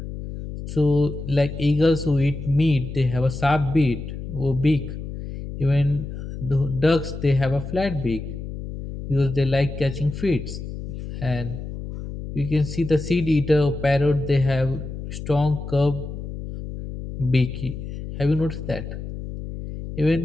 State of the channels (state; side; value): noise; left; hum, 8 dB below the sound